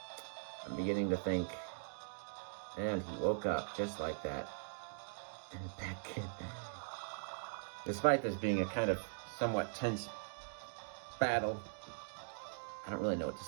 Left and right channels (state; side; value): silent; left; digital silence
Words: I'm beginning to think, and he woke up just like that. And back in. Despite this being a kind of somewhat tense battle, I don't really know what to